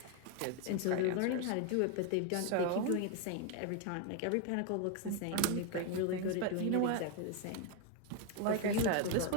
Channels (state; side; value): different; both; correlation 0.01